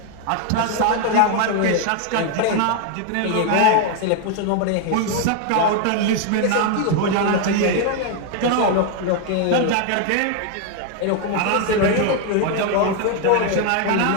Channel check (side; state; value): both; different; correlation 0.01